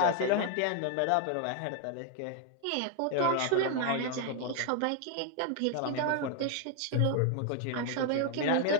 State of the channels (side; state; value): both; different; correlation 0.00